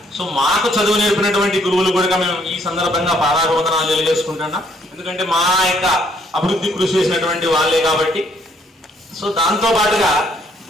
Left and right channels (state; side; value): normal; both; correlation 0.67